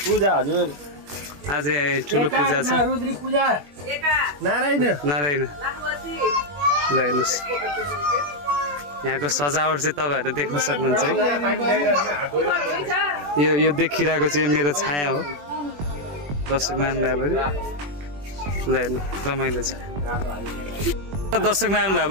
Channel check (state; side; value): late; left; 21 ms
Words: पूजा हजुर आज ठुलो पूजा छ। रुद्री पूजा नारायण नारायण ल हेर्नुहोस् यहाँको सजावट चाहिँ तपाईँहरू देख्न सक्नुहुन्छ है। यो देखिरहेको चाहिँ मेरो छाया हो दर्शक महानुभावहरू। ल हेर्नु रमाइलो छ। दर्शक